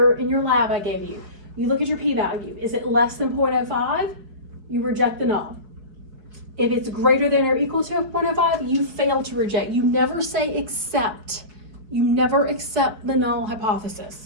lab I gave you. You look at your p-value. Is it less than 0.05? You reject the null. If it's greater than or equal to 0.05, you fail to reject. You never say accept. You never accept the null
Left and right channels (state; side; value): late; left; 4.7 ms